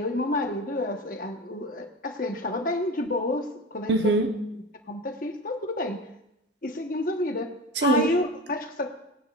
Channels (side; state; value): both; normal; correlation 0.30